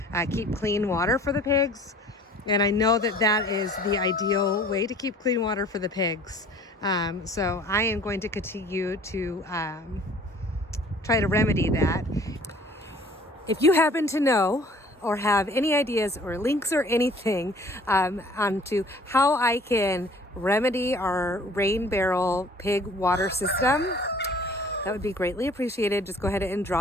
keep clean water for the pigs. And I know that is the ideal way to keep clean water for the pigs. So I am going to continue to try to remedy that. If you happen to know or have any ideas or links or anything onto how I can remedy our rain barrel pig water system, that would be greatly appreciated. Just go ahead and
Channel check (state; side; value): normal; both; correlation 0.51